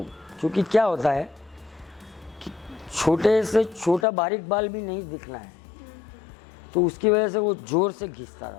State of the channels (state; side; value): drops out; right; at 4.0 s